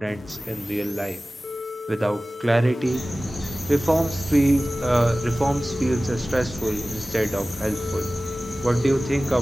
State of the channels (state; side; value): normal; both; correlation 0.97